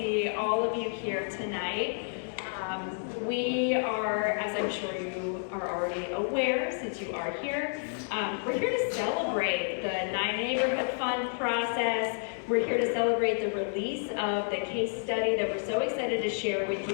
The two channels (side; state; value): right; silent; 58 dB below the other